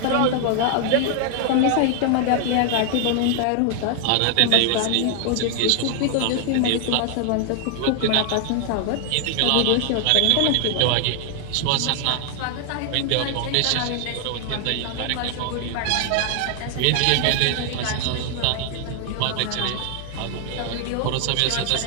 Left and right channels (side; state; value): both; different; correlation 0.00